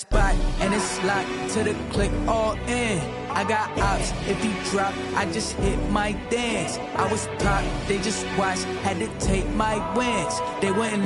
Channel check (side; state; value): both; identical; correlation 1.00